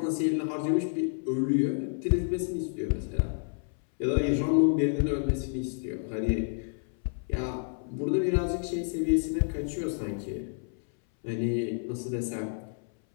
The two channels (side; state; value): right; silent; 58 dB below the other